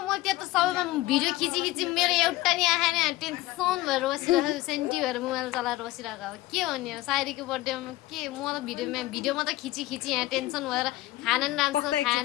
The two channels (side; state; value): right; quieter; 17.7 dB